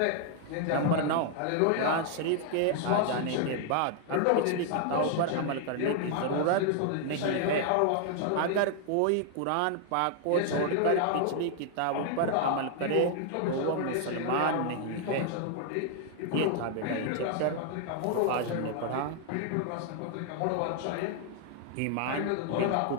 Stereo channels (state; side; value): different; both; correlation 0.00